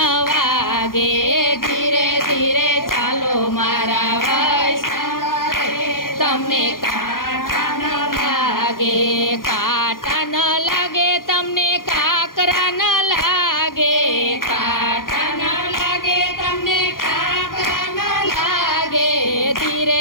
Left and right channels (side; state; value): right; late; 0.91 ms